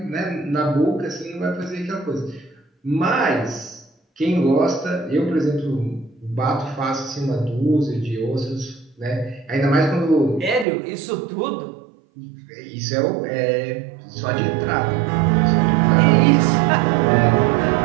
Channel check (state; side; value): drops out; left; at 10.7 s